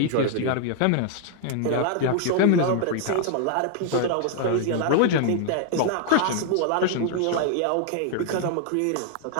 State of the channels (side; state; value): both; different; correlation 0.00